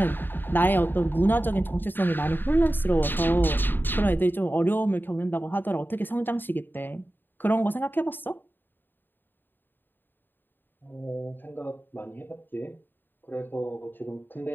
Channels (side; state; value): right; late; 0.094 ms